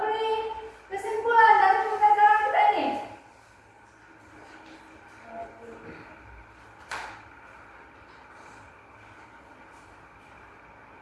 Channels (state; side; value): identical; both; correlation 1.00